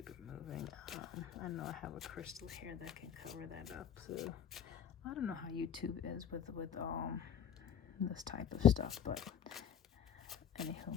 it moving. I know I have a crystal here that can cover that up, so I don't know how YouTube is with this type of stuff, but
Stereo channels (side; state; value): right; quieter; 8.6 dB